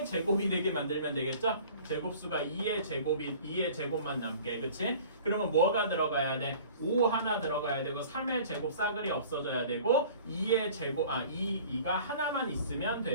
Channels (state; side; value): inverted; both; correlation -0.46